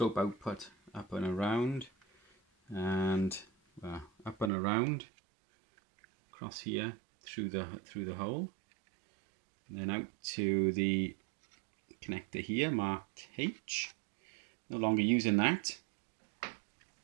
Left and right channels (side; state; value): left; drops out; at 4.5 s